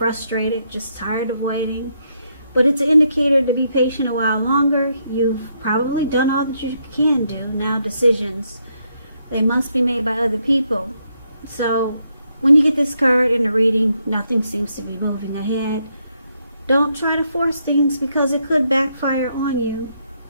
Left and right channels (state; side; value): inverted; both; correlation -0.77